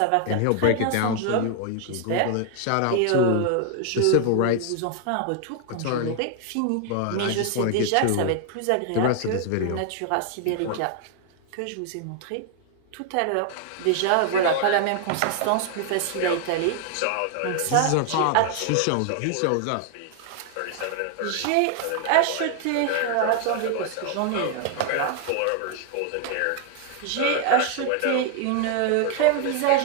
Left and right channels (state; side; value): different; both; correlation 0.00